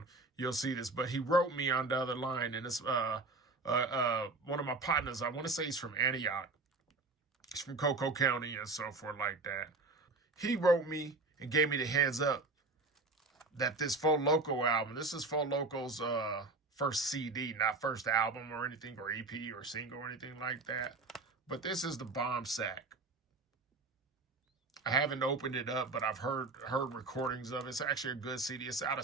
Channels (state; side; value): quieter; left; 3.5 dB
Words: you'll see this. But he wrote me on the other line, and it's one of my partners. I want to say he's from Antioch. He's from Cocoa County and so forth like that. He wrote me and gave me the heads up that this Fo Loco album, this is Fo Loco's first CD, not first album or anything, or EP or single or anything like that. But this is the Bomb Sack. I haven't opened it up, but I've heard recordings of it. It's actually a good CD. It's out of